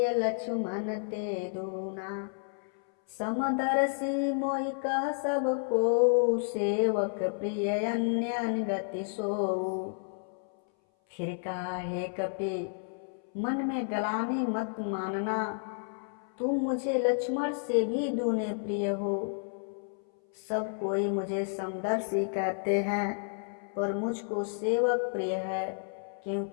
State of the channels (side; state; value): right; silent; 57 dB below the other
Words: लक्ष्मण ते दूना। समदर्शी मोहि कह सब को, सेवक प्रिय अन्य गति सोऊ। फिर कहा, हे कपि, मन में गलानी मत मानना, तुम मुझे लक्ष्मण से भी दूने प्रिय हो। सब कोई मुझे समदर्शी कहते हैं, पर मुझको सेवक प्रिय है,